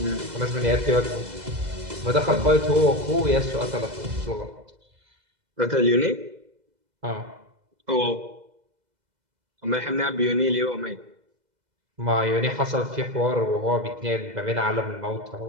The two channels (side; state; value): left; late; 2.0 ms